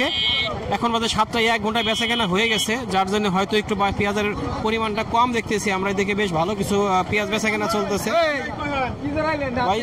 এখন বাজে 7টায়, 1 ঘন্টায় বেচা কেনা হয়ে গেছে, যার জন্য হয়তো একটু পেঁয়াজের পরিমাণটা কম দেখতেছি আমরা। এদিকে বেশ ভালো কিছু পেঁয়াজ বেচা কেনা চলতেছে। ভাই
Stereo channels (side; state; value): both; identical; correlation 1.00